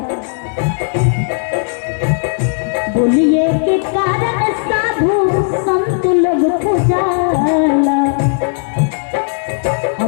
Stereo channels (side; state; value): right; silent; 56 dB below the other